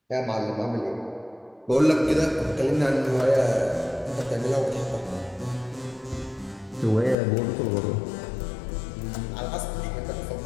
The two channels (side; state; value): right; drops out; at 7.2 s